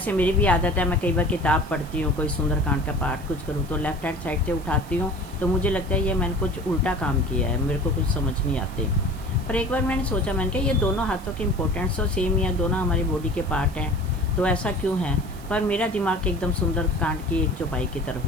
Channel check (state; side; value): noise; right; hiss, 22 dB below the sound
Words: मेरी भी आदत है, मैं कई बार किताब पढ़ती हूँ, कोई सुंदरकांड का पाठ कुछ करूँ तो लेफ़्ट हैंड साइड से उठाती हूँ, तो मुझे लगता है ये मैंने कुछ उल्टा काम किया है, मेरे को कुछ समझ नहीं आते। पर एक बार मैंने सोचा, मैंने कहा ये दोनों हाथों की इम्पोर्टेंस तो सेम ही है, दोनों हमारी बॉडी के पार्ट हैं, तो ऐसा क्यों है। पर मेरा दिमाग एकदम सुंदरकांड की एक चौपाई की तरफ